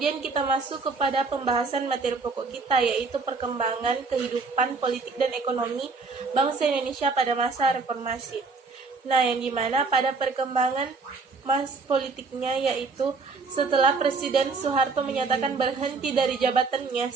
kita masuk kepada pembahasan materi pokok kita, yaitu perkembangan kehidupan politik dan ekonomi bangsa Indonesia pada masa reformasi. Nah, yang dimana pada perkembangan politiknya yaitu setelah Presiden Soeharto menyatakan berhenti dari jabatannya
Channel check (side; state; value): left; quieter; 4.3 dB